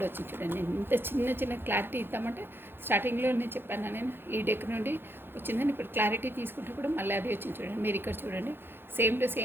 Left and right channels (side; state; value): left; late; 0.10 ms